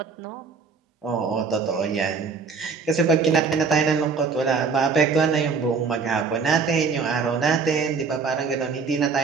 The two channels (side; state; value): left; quieter; 5.1 dB